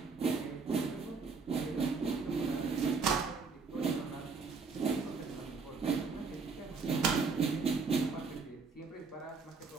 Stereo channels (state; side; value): quieter; left; 4.7 dB